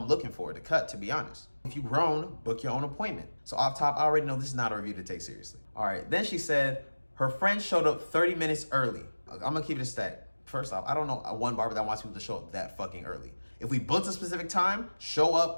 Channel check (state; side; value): inverted; both; correlation -1.00